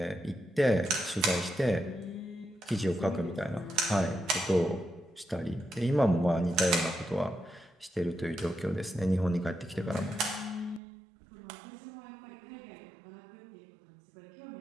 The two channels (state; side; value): drops out; left; at 10.8 s